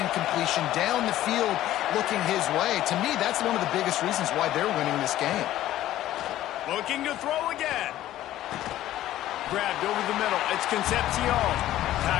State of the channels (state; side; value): quieter; right; 13.8 dB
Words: incompletion down the field looking his way. To me, that's one of the biggest reasons why they're winning this game. Looking to throw again. Grabbed over the middle. It's Concepcion.